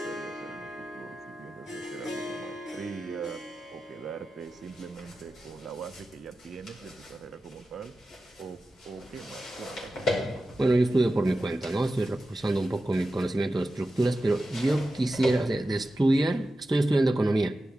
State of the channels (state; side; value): normal; both; correlation 0.93